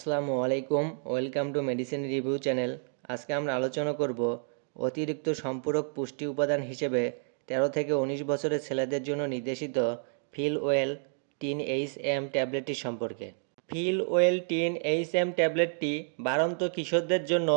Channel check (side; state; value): left; silent; 57 dB below the other